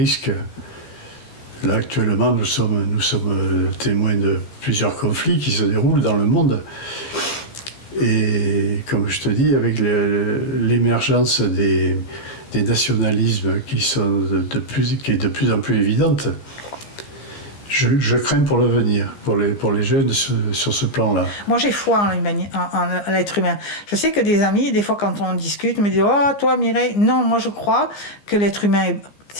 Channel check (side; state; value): right; late; 15 ms